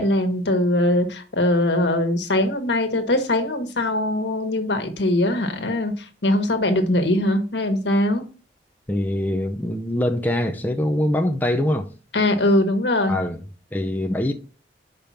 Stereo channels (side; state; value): both; normal; correlation 0.47